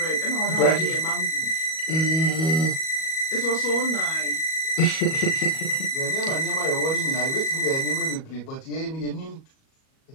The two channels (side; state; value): right; late; 37 ms